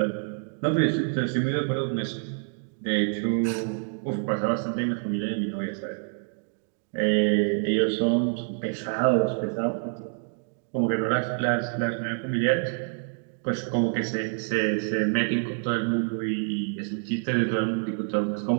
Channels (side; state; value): left; silent; 60 dB below the other